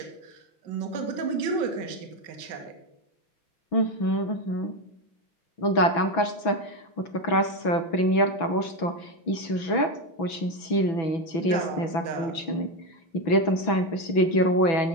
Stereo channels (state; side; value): late; right; 6.1 ms